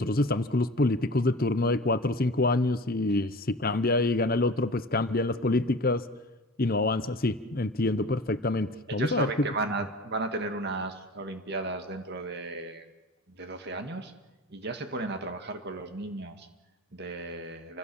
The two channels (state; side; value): normal; both; correlation 0.37